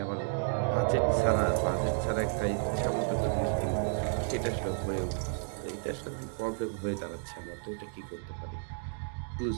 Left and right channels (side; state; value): left; silent; digital silence